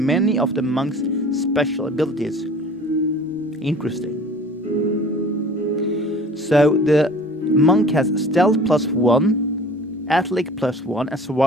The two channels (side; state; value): both; normal; correlation 0.46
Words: of the monk's special abilities. Interesting. So the monk has stealth +1, athletics +1, and